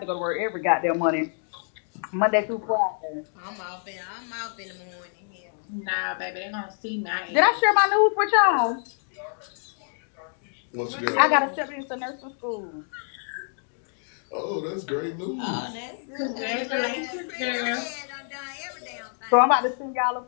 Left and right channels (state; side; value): silent; right; 60 dB below the other